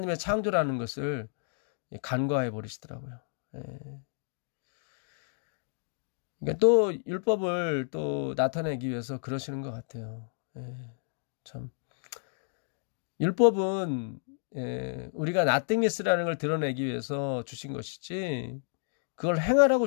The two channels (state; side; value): silent; right; digital silence